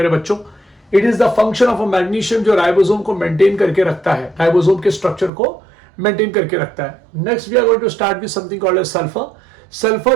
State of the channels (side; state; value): left; drops out; at 5.3 s